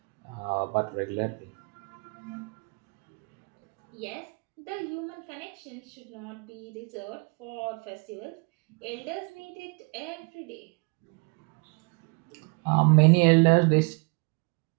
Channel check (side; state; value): left; quieter; 32.4 dB